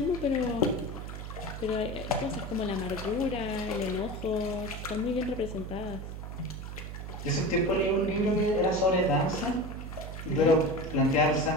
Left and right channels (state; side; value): noise; right; hum, 8 dB below the sound